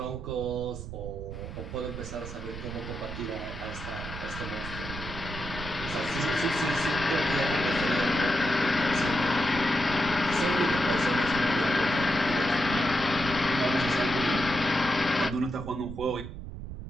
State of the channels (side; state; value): right; noise; rumble, 9 dB below the sound